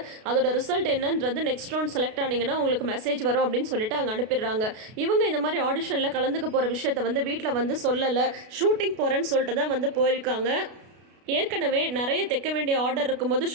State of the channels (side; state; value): left; late; 33 ms